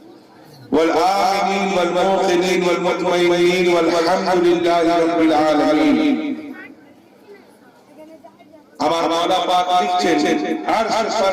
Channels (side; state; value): both; identical; correlation 1.00